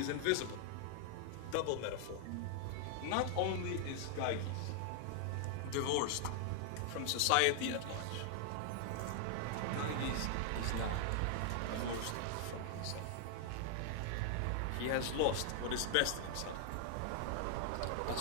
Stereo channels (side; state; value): both; different; correlation 0.00